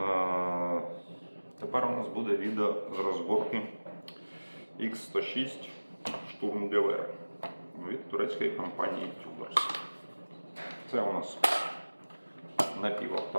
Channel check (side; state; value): both; inverted; correlation -1.00